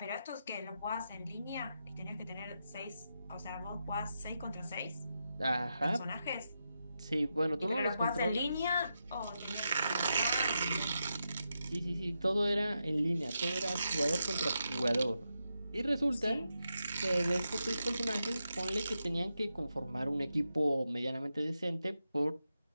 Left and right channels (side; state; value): both; inverted; correlation -0.86